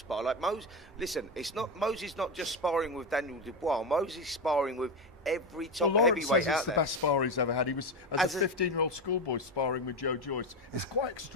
Like Moses, listen, Moses not just sparring with Daniel Dubois. Moses sparring with every top heavyweight out it's the there. best spar he's ever had. He was as a 15-year-old schoolboy sparring with Joe Joyce. It's quite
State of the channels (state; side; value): normal; both; correlation 0.15